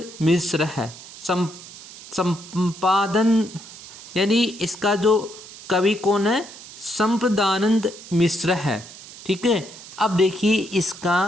मिश्र है। संपादन यानी इसका जो कवि कौन है? संपदानंद मिश्र है। ठीक है, अब देखिए इसका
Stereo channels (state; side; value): noise; right; hiss, 16 dB below the sound